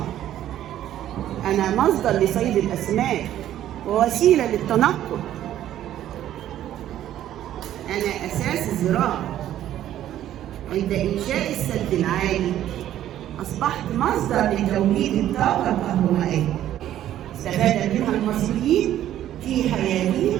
أنا مصدر لصيد الأسماك ووسيلة للتنقل. أنا أساس الزراعة. عند إنشاء السد العالي أصبحت مصدر لتوليد الطاقة الكهربائية، استفاد منها المصريين في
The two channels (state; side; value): quieter; left; 12.1 dB